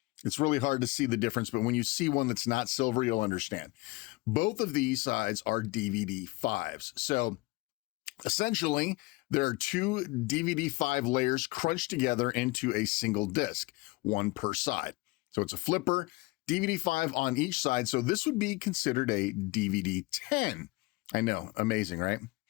It's really hard to see the difference, but when you see one that's not silver, you'll understand. Both of these sides are DVD-5s. So essentially, there are two DVD-5 layers crunched together into a single disc, one per side. So it's a flipper, DVD-5 on each side. So this would be considered a DVD-10. I know, amazing, right?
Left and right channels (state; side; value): quieter; right; 22.9 dB